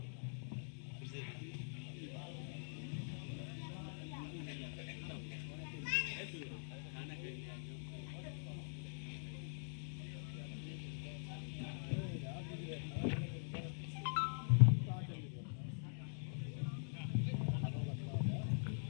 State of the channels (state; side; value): silent; right; digital silence